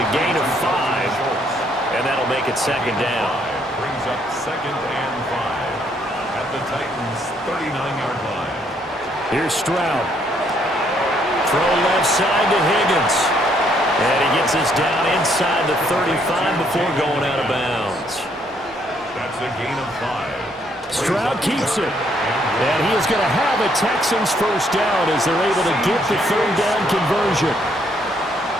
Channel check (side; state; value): both; normal; correlation 0.69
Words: a gain of 5, and that'll make it 2nd down. Brings up 2nd and 5 at the Titans' 39-yard line. Here's Stroud. Throw left side to Higgins. And he gets this down inside the 35 before going out of bounds. That's a gain of 5. Stroud keeps it. And he is going to have a Texans 1st down as they're able to get the 3rd down conversion.